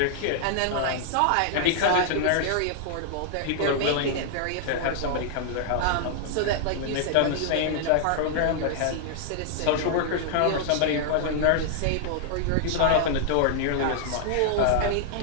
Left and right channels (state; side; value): different; both; correlation -0.01